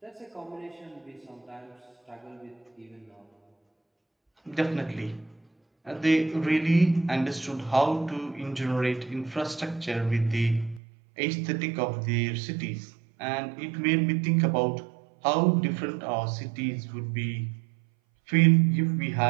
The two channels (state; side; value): drops out; left; at 10.8 s